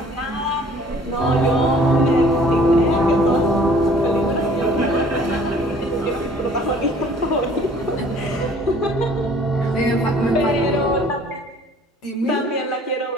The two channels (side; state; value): both; normal; correlation 0.54